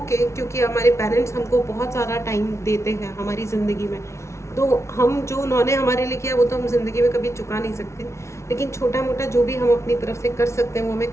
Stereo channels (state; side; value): late; right; 0.13 ms